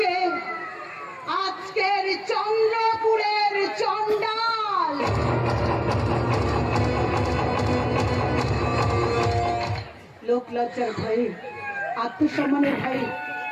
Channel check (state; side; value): identical; both; correlation 1.00